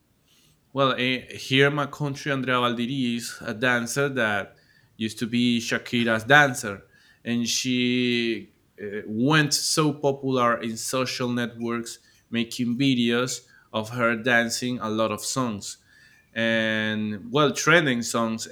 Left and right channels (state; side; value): identical; both; correlation 1.00